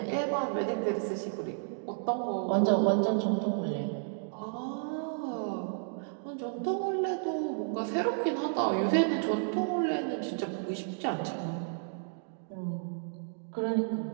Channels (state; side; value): silent; left; digital silence